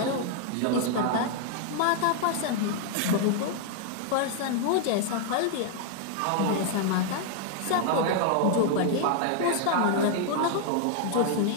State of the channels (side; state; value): both; different; correlation 0.00